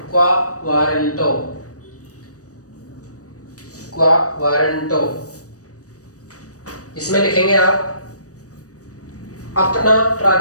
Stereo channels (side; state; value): right; late; 0.66 ms